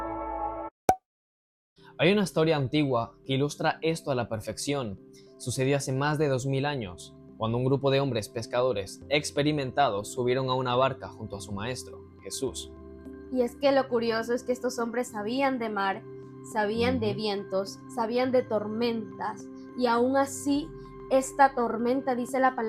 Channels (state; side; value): identical; both; correlation 1.00